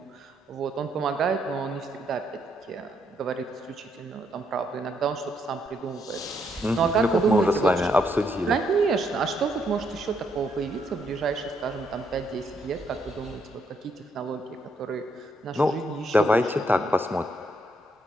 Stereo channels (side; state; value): both; normal; correlation 0.74